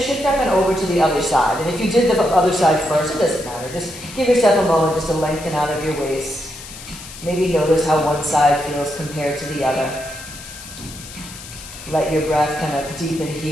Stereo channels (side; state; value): left; noise; hiss, 14 dB below the sound